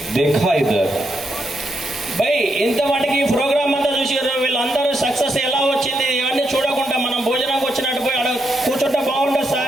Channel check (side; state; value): both; normal; correlation 0.81